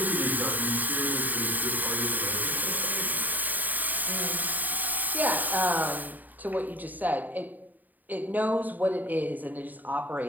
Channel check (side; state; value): left; late; 0.085 ms